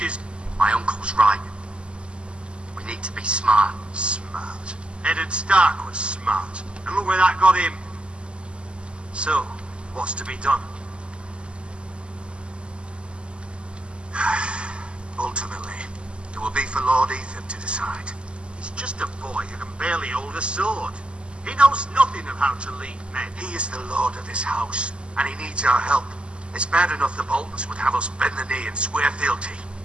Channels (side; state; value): left; late; 0.052 ms